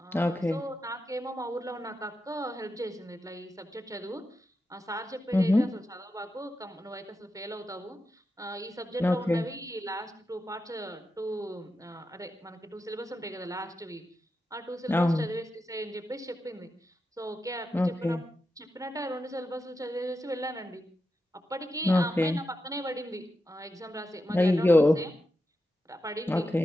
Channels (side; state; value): both; normal; correlation 0.88